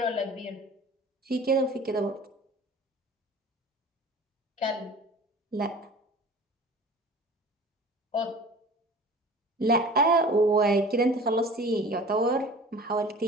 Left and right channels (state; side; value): normal; both; correlation 0.42